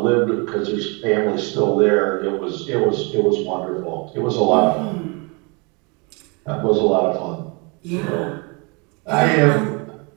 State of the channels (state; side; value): quieter; left; 31.2 dB